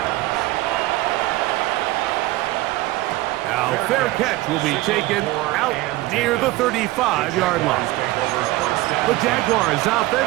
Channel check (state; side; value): quieter; left; 18.4 dB